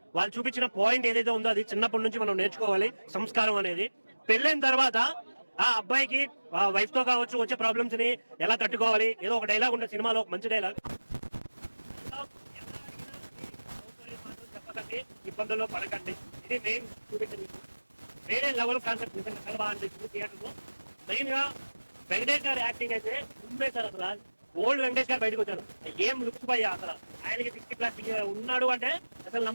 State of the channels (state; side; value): inverted; both; correlation -1.00